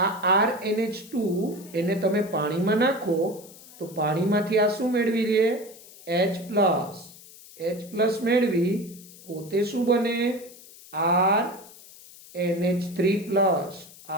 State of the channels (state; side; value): noise; left; hiss, 20 dB below the sound